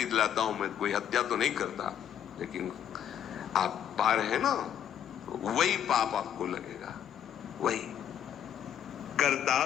लाता हूं, मैं कोई हत्या तो नहीं करता, लेकिन आप पा रहे हैं ना, तो वही पाप आपको लगेगा, वही कर्ता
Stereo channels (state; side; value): quieter; right; 9.6 dB